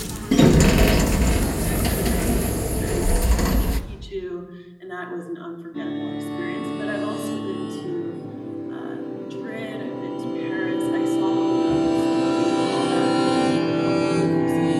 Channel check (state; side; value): identical; both; correlation 1.00